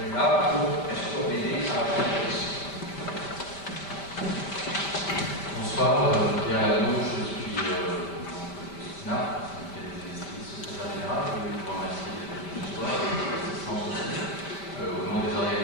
Bonsoir, Pierre Lano, je suis SNAP, secrétaire général. Je voulais vous remercier d'être venu ce soir et de l'assistance aussi au nom des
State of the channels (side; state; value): right; late; 5.1 ms